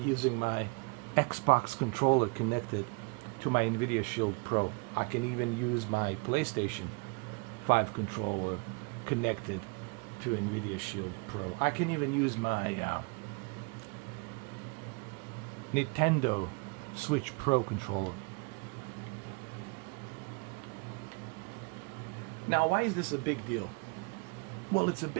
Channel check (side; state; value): left; quieter; 30.9 dB